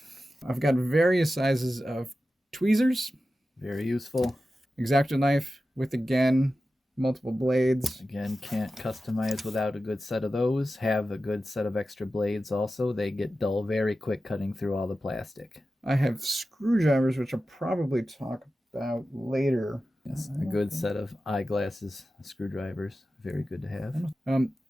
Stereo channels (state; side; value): normal; both; correlation 0.93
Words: I've got various sizes of tweezers. Very useful. X-Acto knife with, again, multiple blades. Again, can't customize without a good set of those. Have a good set of extra blades also. They get dull very quick cutting through all the plastic. I have screwdrivers, which I'll probably talk about later. Yes, a good set of eyeglasses, screwdrivers. Very good to have.